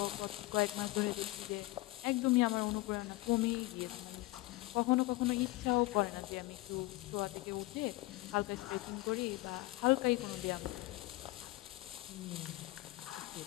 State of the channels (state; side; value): quieter; right; 19.9 dB